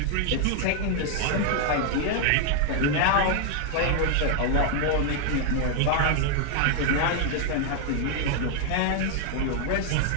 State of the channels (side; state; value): both; different; correlation 0.00